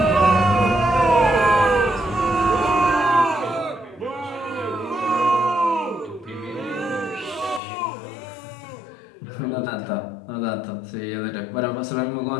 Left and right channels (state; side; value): drops out; right; at 7.6 s